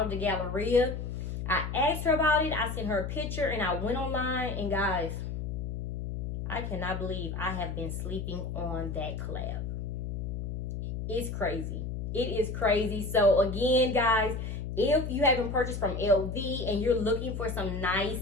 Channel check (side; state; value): left; noise; hum, 4 dB below the sound